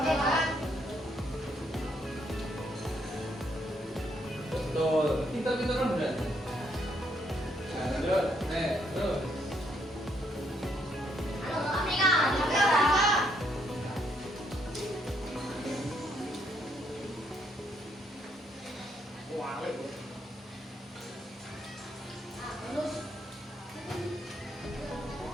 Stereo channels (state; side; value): normal; both; correlation 0.73